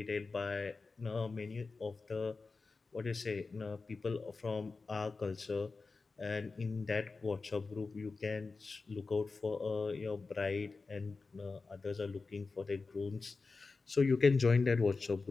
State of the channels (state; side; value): quieter; right; 4.1 dB